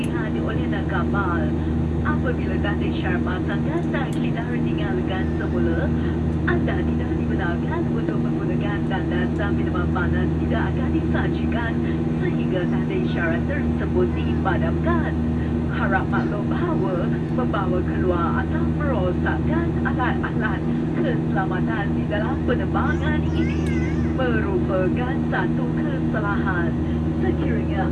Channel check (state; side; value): identical; both; correlation 1.00